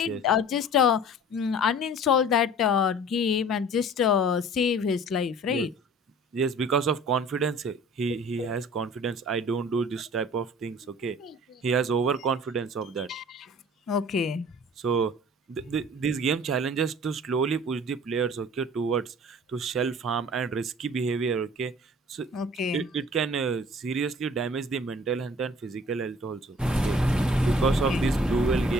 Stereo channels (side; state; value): both; normal; correlation 0.48